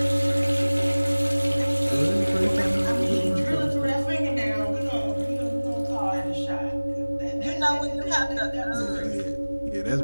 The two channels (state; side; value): inverted; both; correlation -1.00